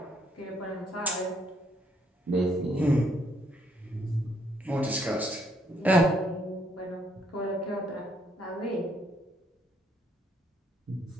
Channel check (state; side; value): normal; both; correlation 0.70